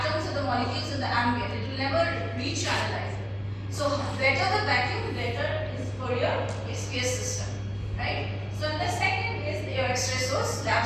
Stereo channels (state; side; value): identical; both; correlation 1.00